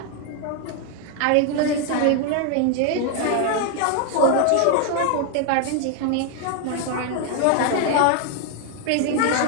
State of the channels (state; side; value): different; both; correlation 0.00